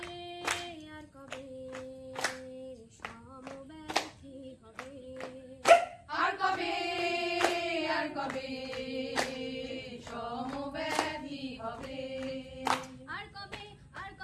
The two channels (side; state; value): both; identical; correlation 1.00